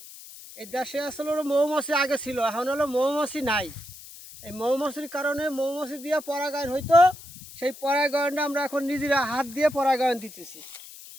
এই দেশে আসলে হলো মৌমাছি আগে ছিল, এখন হলো মৌমাছি নাই। এই মৌমাছির কারণে মৌমাছি দিয়ে পরাগায়ন হইতো, সেই পরাগায়নটা আমরা এখন নিজেরা হাত দিয়ে পরাগায়ন দিতেছি।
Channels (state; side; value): noise; left; hiss, 17 dB below the sound